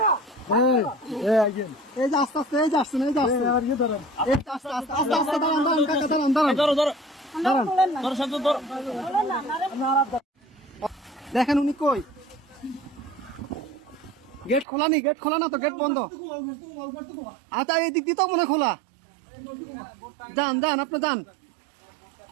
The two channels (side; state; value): left; drops out; at 14.7 s